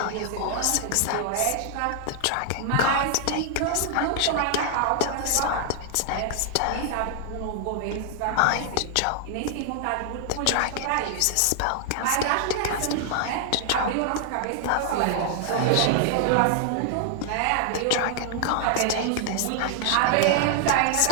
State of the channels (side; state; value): both; different; correlation 0.00